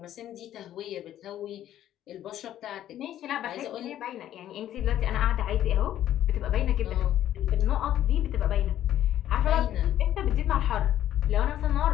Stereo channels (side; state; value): right; quieter; 11.9 dB